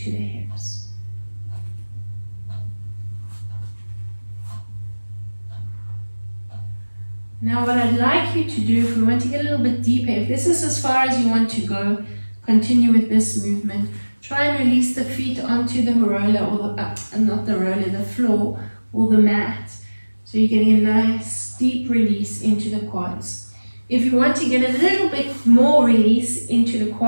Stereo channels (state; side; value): inverted; both; correlation -1.00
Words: to the hips. Now what I'd like you to do, if we want to get a little bit deeper, if this is as far as you want to go, continue with this movement. Try and release the feet onto the roller, or not the roller, the floor or the mat. So you're getting a nice deep release into the quads. If you want to get a little bit more release into the